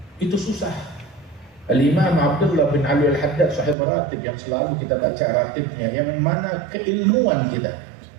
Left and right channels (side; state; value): left; drops out; at 3.8 s